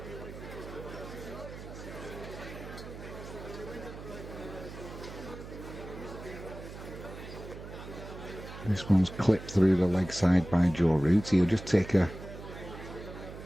This one's clipped through the leg side by Joe Root. He'll just take a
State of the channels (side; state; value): right; noise; hum, 12 dB below the sound